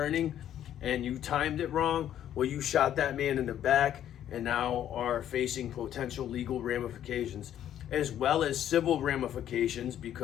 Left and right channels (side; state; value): right; quieter; 10.9 dB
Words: and you timed it wrong, well, you shot that man in the back and now are facing potential legal ramifications as well as civil ramifications,